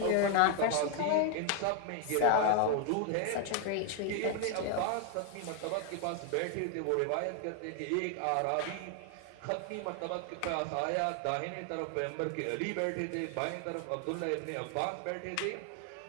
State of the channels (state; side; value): different; both; correlation 0.00